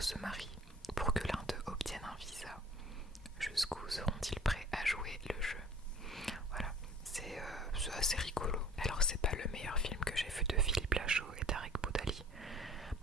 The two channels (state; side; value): normal; both; correlation 0.48